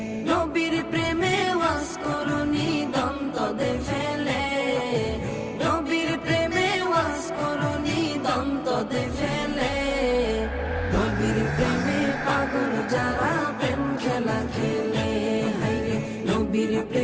নবীর প্রেমে ওয়াজ করুনি দন্ত দে ফেলে। নবীর প্রেমে ওয়াজ করুনি দন্ত দে ফেলে। নবীর প্রেমে পাগল যারা প্রেম খেলা খেলে। হায়রে নবীর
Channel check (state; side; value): identical; both; correlation 1.00